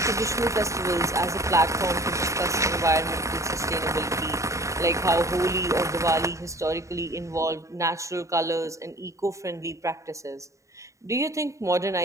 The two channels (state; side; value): late; left; 0.15 ms